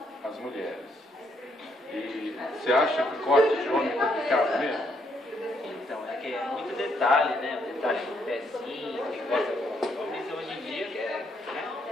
as mulheres. E você acha que corte de homem é complicado mesmo? Então, é que é muito detalhe, né? O detalhe do pezinho, que gosta dos homens hoje em dia, que é, né?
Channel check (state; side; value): normal; both; correlation 0.73